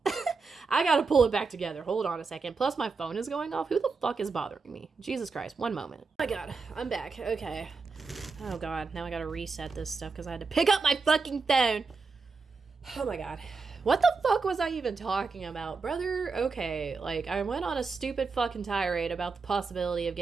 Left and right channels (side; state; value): left; quieter; 4.5 dB